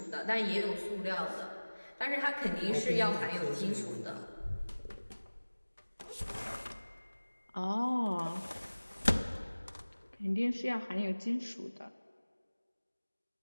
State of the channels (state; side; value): inverted; both; correlation -1.00